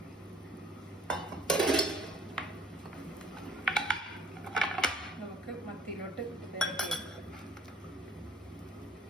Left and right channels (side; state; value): both; normal; correlation 0.55